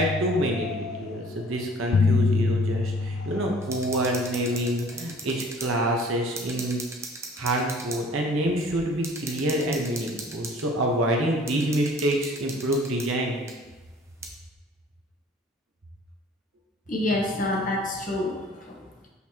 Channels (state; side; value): normal; both; correlation 0.52